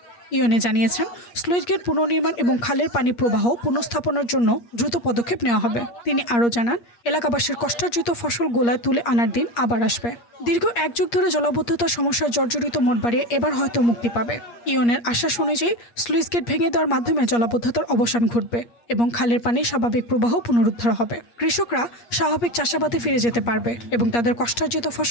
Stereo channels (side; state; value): right; late; 8.5 ms